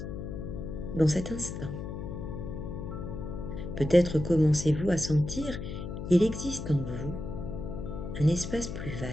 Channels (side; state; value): left; noise; hum, 6 dB below the sound